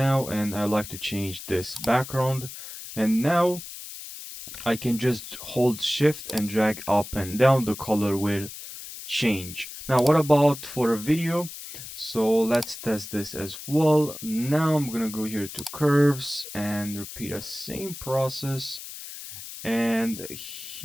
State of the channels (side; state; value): left; noise; hiss, 12 dB below the sound